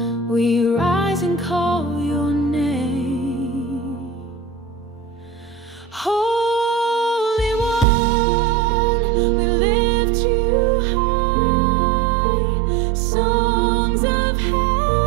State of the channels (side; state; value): left; drops out; at 7.9 s